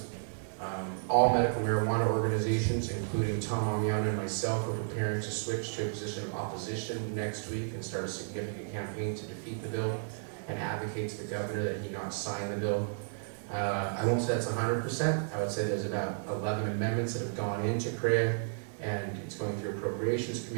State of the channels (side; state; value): left; silent; 56 dB below the other